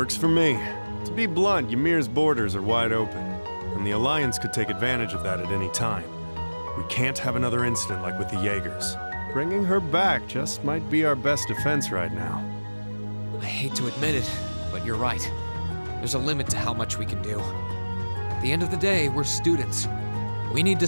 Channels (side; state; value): both; inverted; correlation -1.00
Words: for me. To be blunt, Ymir's borders are wide open, and the Alliance could take advantage of that at any time. We can't have another incident like with the Jaegers. Bringing her back just might be our best defense right now. I hate to admit it, but you're right. There's a limit to how much we can do. At the end of the day, we're students. We need to